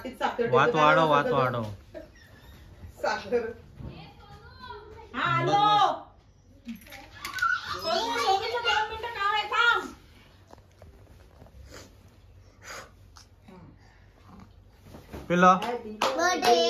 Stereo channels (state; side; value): identical; both; correlation 1.00